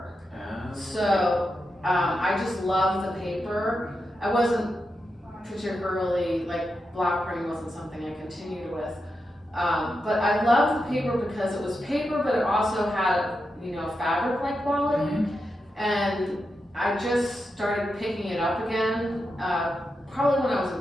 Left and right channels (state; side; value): normal; both; correlation 0.87